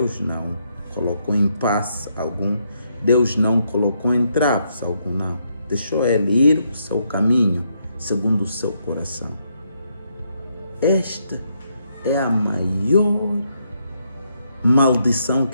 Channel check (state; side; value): inverted; both; correlation -0.77